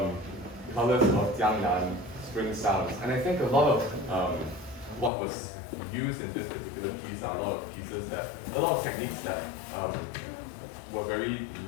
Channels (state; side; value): drops out; right; at 5.1 s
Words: Colors of Jiangnan, spring sounds. And I think a lot of what was used in this particular piece are a lot of techniques that were very